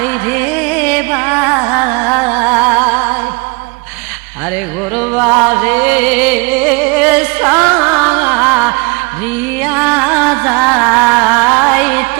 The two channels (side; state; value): left; quieter; 28.8 dB